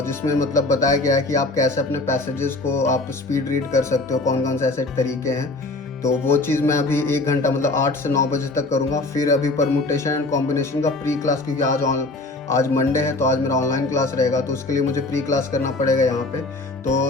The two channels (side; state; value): right; quieter; 3.0 dB